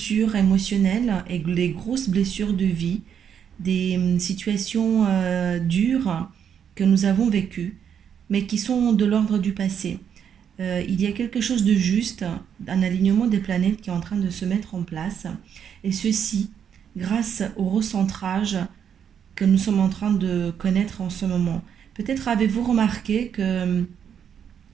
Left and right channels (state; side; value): quieter; left; 8.2 dB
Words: émotionnelles et des grosses blessures de vie, des situations dures que nous avons vécues, mais qui sont de l'ordre du passé. Il y a quelque chose de juste, un alignement des planètes qui est en train de se mettre en place, et ceci grâce au recentrage que nous sommes en train de connaître en ce moment. Peut-être avez-vous remarqué que